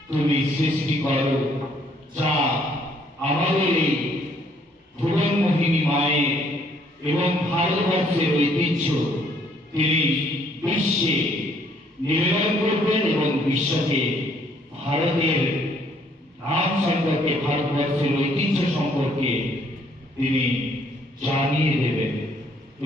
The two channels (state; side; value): normal; both; correlation 0.65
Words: তুমি সৃষ্টি করো, যা আমাদের এই ভুবনমোহিনী মায়ের এবং ভারতবর্ষের ঐতিহ্য তিনি বিশ্বে নিবেদন করবেন এবং বিশ্বকে ভারতের নাম সম্পর্কে, ভারতবর্ষের ঐতিহ্য সম্পর্কে তিনি জানিয়ে দেবেন